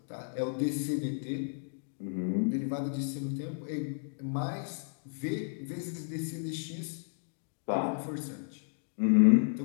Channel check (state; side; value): silent; right; digital silence